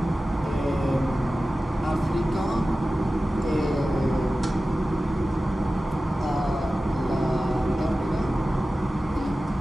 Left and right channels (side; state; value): both; normal; correlation 0.95